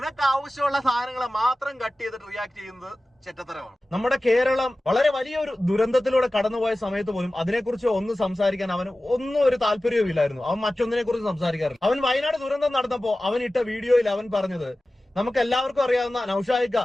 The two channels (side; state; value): both; normal; correlation 0.96